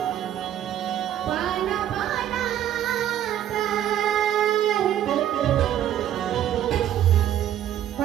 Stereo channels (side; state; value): left; quieter; 11.1 dB